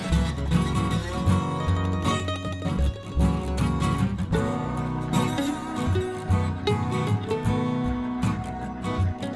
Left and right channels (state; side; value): identical; both; correlation 1.00